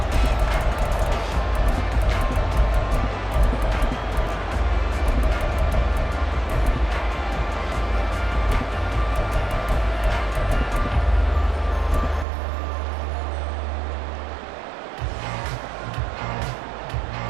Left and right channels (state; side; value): drops out; left; at 12.2 s